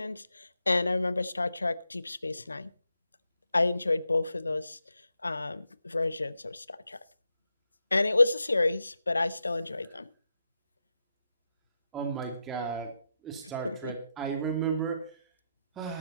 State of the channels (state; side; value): inverted; both; correlation -0.85